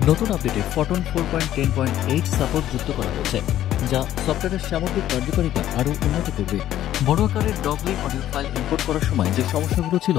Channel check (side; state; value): right; quieter; 12.5 dB